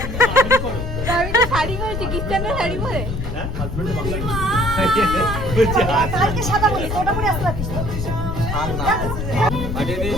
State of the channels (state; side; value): noise; left; rumble, 4 dB below the sound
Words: করে আমি তো শাড়ি পরেছি, খ্রিস্টানরা শাড়ি পরে। কালকে সাদা বলি তো ওটা পরে আসতে পারিস তো। পাঠিয়ে